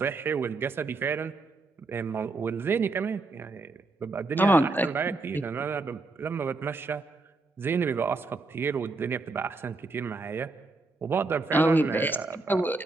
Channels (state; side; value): quieter; left; 3.5 dB